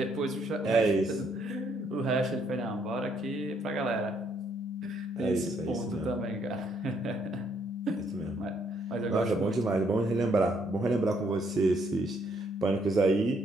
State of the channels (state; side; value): normal; both; correlation 0.70